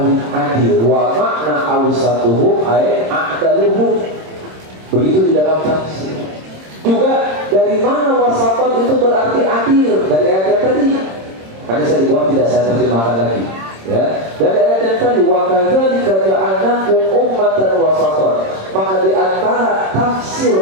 adil. Wa makna awsatuhum ay a'daluhum. Begitu di dalam tafsir. Juga dari mana wasatan itu berarti adil? Dari ayat tadi. Karena saya dibuat tidak saya terjemahkan lagi. Ya, dari ayat yang tadi wa kadzalika ja'alnakum ummatan wasatan. Maka di antara tafsir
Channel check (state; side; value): late; left; 26 ms